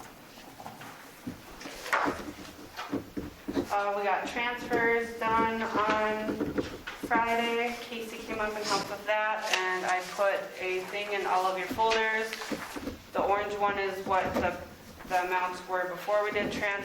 we got transfers done on Friday. Casey came up and helped with that, and I put a thing in all of your folders. The orange one is what the amounts were before we did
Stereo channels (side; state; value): both; identical; correlation 1.00